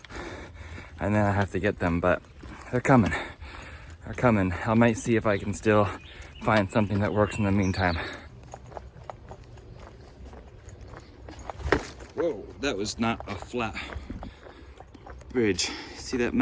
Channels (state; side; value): identical; both; correlation 1.00